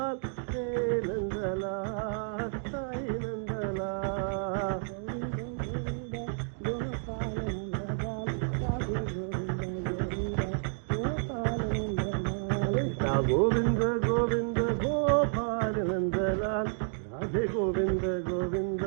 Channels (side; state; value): left; silent; digital silence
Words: హే నందలాల్ సాయి నందలాల్ కృష్ణ గోవింద గోవింద గోపాల నందలాల్ రాధే గోవింద గోవింద